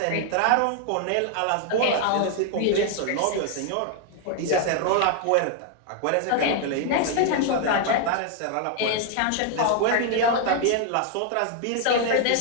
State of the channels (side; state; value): both; different; correlation 0.00